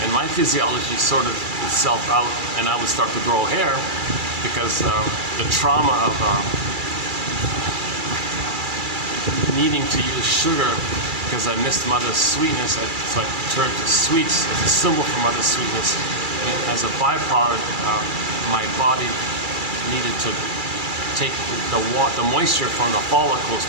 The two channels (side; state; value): left; late; 2.3 ms